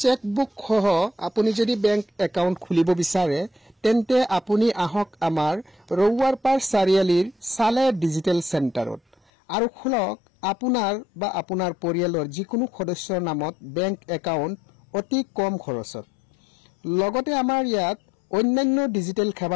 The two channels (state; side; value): drops out; right; at 9.2 s